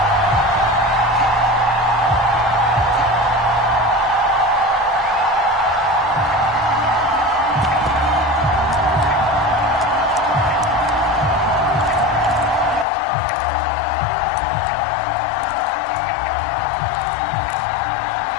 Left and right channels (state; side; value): drops out; right; at 12.9 s